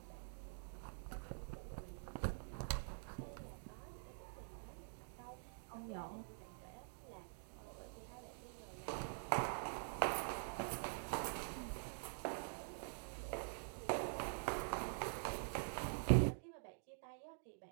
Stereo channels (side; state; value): left; silent; digital silence